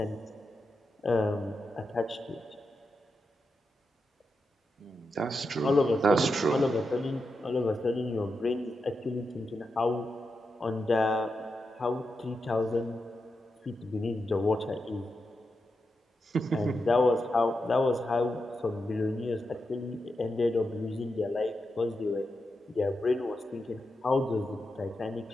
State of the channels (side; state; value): both; normal; correlation 0.87